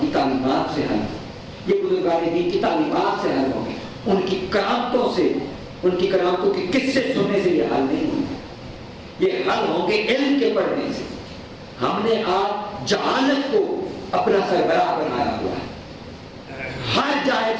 کی تعلیمات سے حل، یہ بزرگان دین کی تعلیمات سے حل ہوں گے. ان کی کرامتوں سے، ان کی کرامتوں کے قصے سننے سے یہ حل نہیں ہوں گے. یہ حل ہوں گے علم کے پڑھنے سے. ہم نے آج جہالت کو اپنا سربراہ بنایا ہوا ہے. ہر جاہل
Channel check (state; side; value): identical; both; correlation 1.00